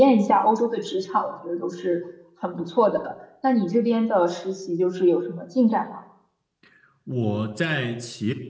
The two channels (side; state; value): both; identical; correlation 1.00